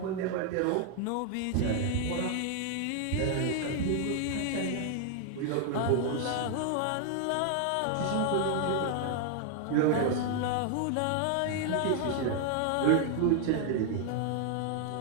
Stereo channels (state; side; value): different; both; correlation 0.00